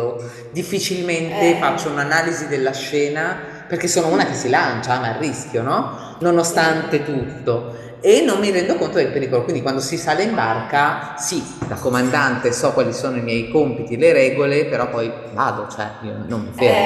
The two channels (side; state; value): both; identical; correlation 1.00